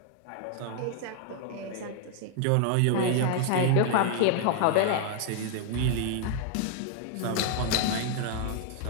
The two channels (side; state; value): both; different; correlation 0.00